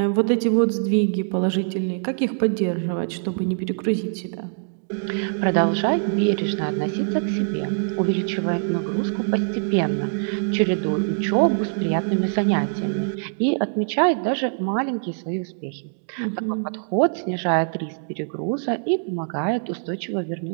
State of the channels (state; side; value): silent; left; digital silence